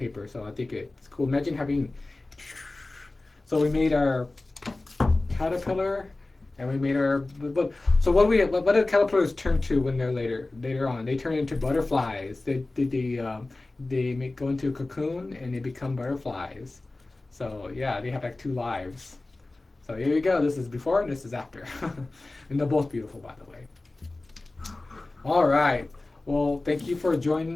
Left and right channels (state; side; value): quieter; right; 3.0 dB